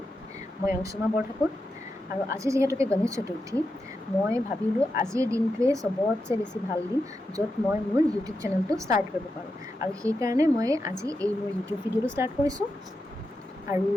মই অংশুমা বৰঠাকুৰ আৰু আজি যিহেতুকে গণেশ চতুৰ্থী, মই ভাবিলোঁ আজিৰ দিনটোৱে চবতছে বেছি ভাল দিন য'ত মই মোৰ ইউটিউব চেনেলটো ষ্টাৰ্ট কৰিব পাৰোঁ। আৰু সেইকাৰণে মই আজি এই মোৰ ইউটিউব ভিডিঅ'টো ষ্টাৰ্ট কৰিছোঁ। আৰু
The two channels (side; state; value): both; normal; correlation 0.88